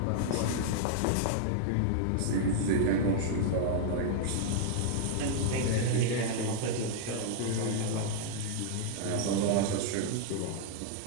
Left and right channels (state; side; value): different; both; correlation -0.01